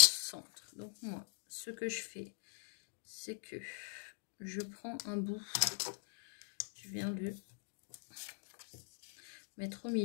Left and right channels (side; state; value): right; silent; digital silence